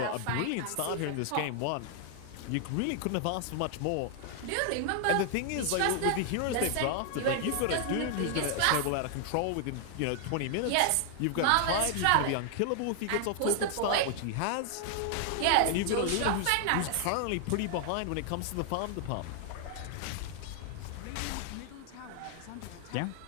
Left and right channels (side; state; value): both; different; correlation 0.00